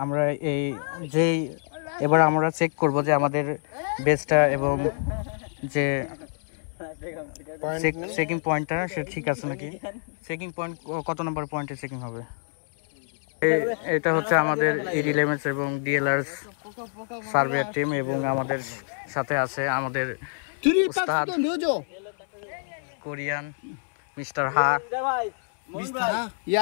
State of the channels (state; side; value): silent; right; 61 dB below the other